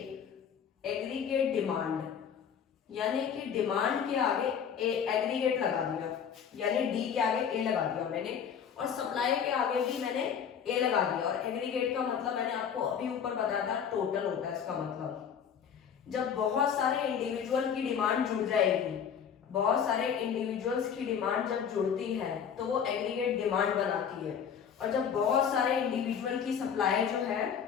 डिमांड, यानी कि डिमांड के आगे एग्रीगेट लगा दिया, यानी डी के आगे ए लगा दिया मैंने, और सप्लाई के आगे भी मैंने ए लगा दिया। और एग्रीगेट का मतलब मैंने आपको अभी ऊपर बताया था, टोटल होता है इसका मतलब। जब बहुत सारे इंडिविजुअल की डिमांड जुड़ जाएगी, बहुत सारे इंडिविजुअल्स की डिमांड जब जुड़ती है तो वो एग्रीगेट डिमांड बनाती है, और जब बहुत सारे इंडिविजुअल की सप्लाई जो है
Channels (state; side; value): quieter; right; 7.7 dB